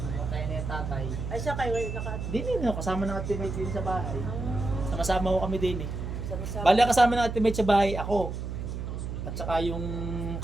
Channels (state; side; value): noise; right; hum, 5 dB below the sound